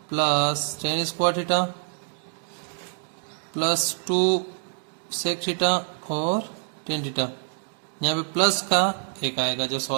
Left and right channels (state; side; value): silent; left; digital silence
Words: plus tan square theta plus 2 sec theta और टेन थीटा। यहाँ पे प्लस का एक आएगा जो